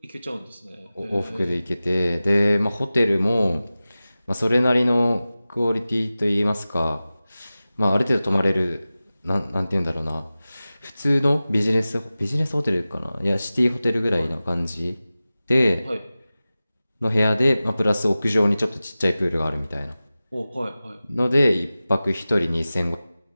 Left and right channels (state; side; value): inverted; both; correlation -0.96